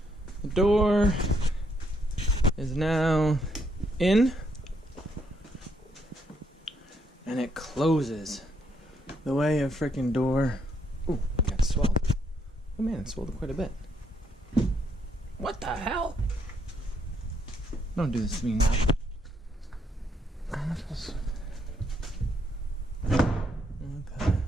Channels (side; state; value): both; normal; correlation 0.74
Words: the door is now in, and it closes the way a freaking door. Ooh, it got swelled. Oh man, it swelled quite a bit. What the hell? Don't do this to me now.